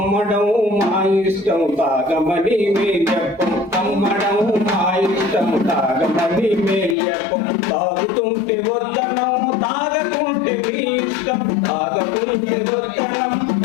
మా ఇష్టం తాగమని మే చెప్పం, అమ్మడం మా ఇష్టం తాగమని మే చెప్పం, తాగుతుంటే వద్దనం తాగకుంటే మీ ఇష్టం, తాగకుంటే వద్దనం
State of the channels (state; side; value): drops out; right; at 7.0 s